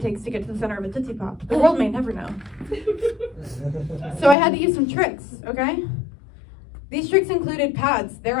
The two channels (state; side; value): drops out; right; at 4.4 s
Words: takes to get to the center of a Tootsie Pop. The world may never know. So I had to use some tricks, okay? These tricks included pads. They're